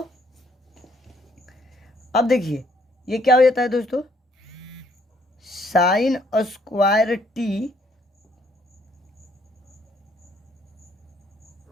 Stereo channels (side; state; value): both; normal; correlation 0.67